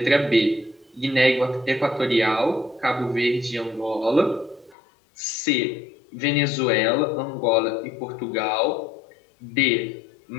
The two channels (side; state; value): right; drops out; at 4.8 s